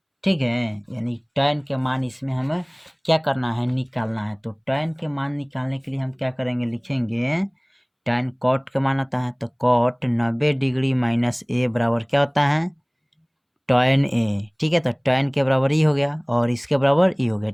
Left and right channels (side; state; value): both; identical; correlation 1.00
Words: ठीक है, यानी tan के मान इसमें हमें क्या करना है? निकालना है। तो tan के मान निकालने के लिए हम क्या करेंगे? लिखेंगे tan cot का मान आता है, तो cot 90 डिग्री माइनस a बराबर क्या होता है? tan a। ठीक है, तो tan के बराबर ही हो गया और इसके बराबर ही हो गया।